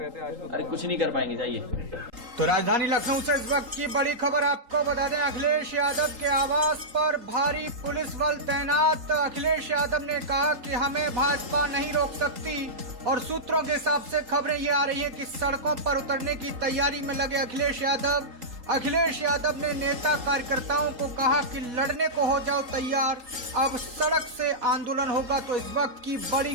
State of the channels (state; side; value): late; left; 3.8 ms